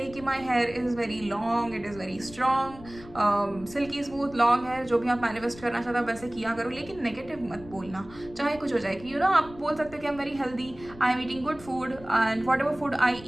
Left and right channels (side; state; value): left; noise; rumble, 19 dB below the sound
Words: कि my hair is very long, it is very strong, silky smooth long hair, जो भी आप manifest करना चाहते हो वैसे किया करो, लेकिन नेगेटिव मत बोलना, चाहे कुछ हो जाए। कि यू नो आप बोल सकते हो कि I am very healthy, I am eating good food and what ever food I